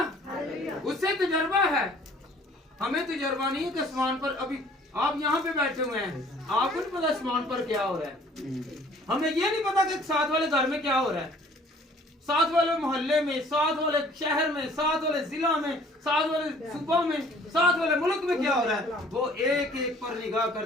उससे तजर्बा है, हमें तजर्बा नहीं है कि आसमान पर, अभी आप यहाँ पे बैठे हुए हैं, आपको नहीं पता आसमान पर क्या हो रहा है। हमें ये नहीं पता कि साथ वाले घर में क्या हो रहा है, साथ वाले मोहल्ले में, साथ वाले शहर में, साथ वाले जिला में, साथ वाले सूबा में, साथ वाले मुल्क में क्या हो रहा है। वो एक एक पर निगाह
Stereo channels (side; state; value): both; normal; correlation 0.55